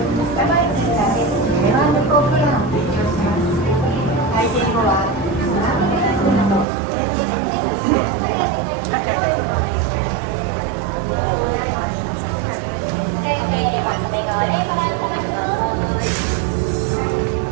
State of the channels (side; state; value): left; drops out; at 6.7 s